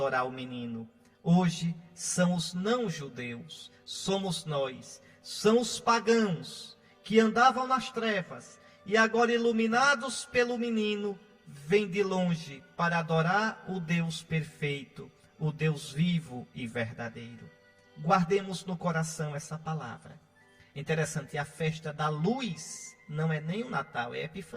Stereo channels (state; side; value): identical; both; correlation 1.00